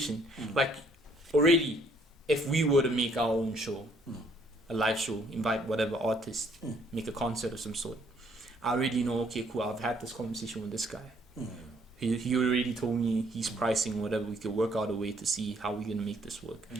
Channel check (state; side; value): normal; both; correlation 0.65